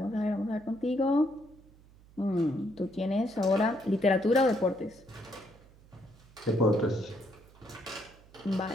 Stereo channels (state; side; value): noise; right; hum, 25 dB below the sound